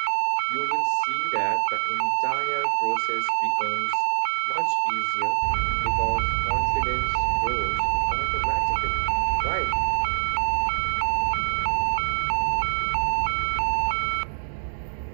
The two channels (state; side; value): silent; left; digital silence